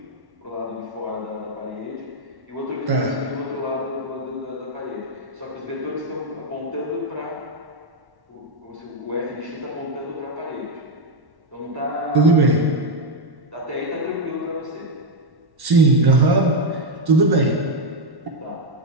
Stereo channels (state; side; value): late; left; 1.1 ms